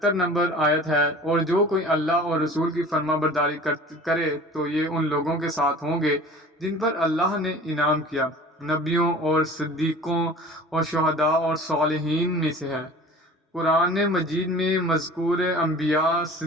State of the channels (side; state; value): both; normal; correlation 0.42